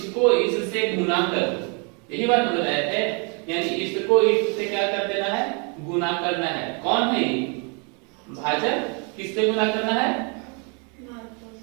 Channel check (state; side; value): quieter; left; 35.5 dB